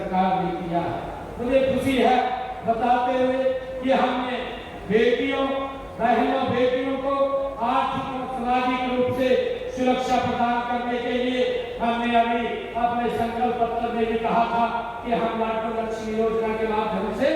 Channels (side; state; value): both; identical; correlation 1.00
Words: ने किया है। मुझे खुशी है बताते हुए कि हमने बेटियों बहनों बेटियों को आर्थिक और सामाजिक रूप से सुरक्षा प्रदान करने के लिए हमने अभी अपने संकल्प पत्र में भी कहा था कि हम लाडली लक्ष्मी योजना के माध्यम से